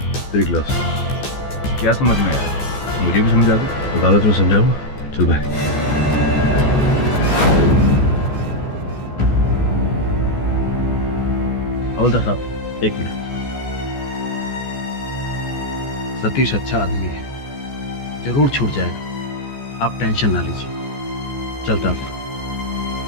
तेरी ग्लास। क्या समझ में आया? मुझे भी समझा दो। अदालत में समझाऊंगा। चल भाई। हवलदार साहब, एक मिनट। सतीश अच्छा आदमी है, जरूर छूट जाएगा, आप टेंशन ना लीजिए। चलता हूं।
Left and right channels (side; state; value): right; late; 14 ms